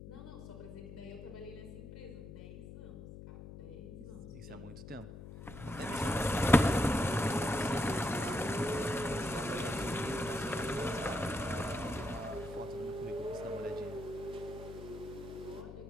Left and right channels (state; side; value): noise; left; hum, 12 dB below the sound